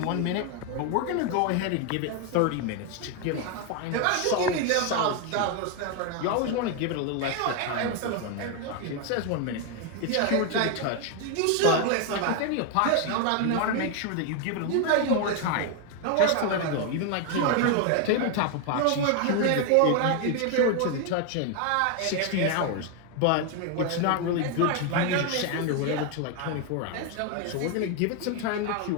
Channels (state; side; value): different; both; correlation 0.01